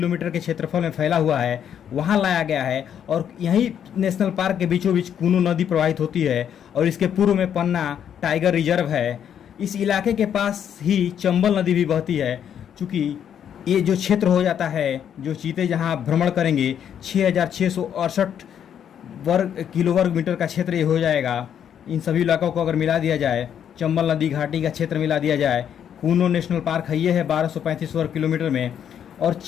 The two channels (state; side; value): quieter; right; 9.0 dB